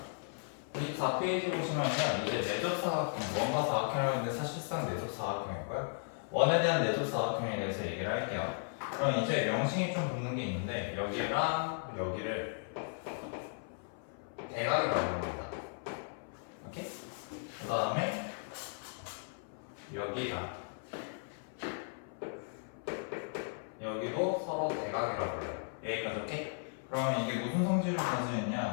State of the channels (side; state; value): right; silent; 54 dB below the other